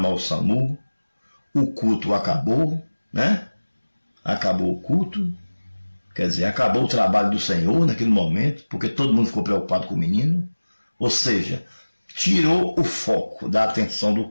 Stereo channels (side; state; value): both; inverted; correlation -1.00